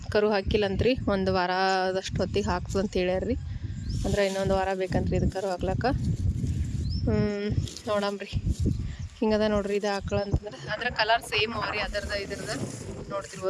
ಕರು ಹಾಕಿಲ್ಲಂತ್ರಿ. ಒಂದು ವಾರದಷ್ಟು ಹೊತ್ತಿಗೆ ಹಾಕ್ತದೆ ಅಂತ ಹೇಳ್ಯಾರ್ರಿ. ಅಂದ್ರೆ ಇನ್ನೊಂದು ವಾರ ಬೇಕಂತ್ರಿ ಇದು ಕರು ಹಾಕ್ಲಕ್ಕ. ನೋಡಮ್ರಿ. ಹಿಂಗದ ನೋಡ್ರಿ ಇದು ಆಕಳ ಅಂತಂದ್ರೆ ಅದ್ರ ಕಲರ್ ಸೇಮ್ ಅವ ರೀ. ಇದ್ರದ್ದು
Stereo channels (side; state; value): both; identical; correlation 1.00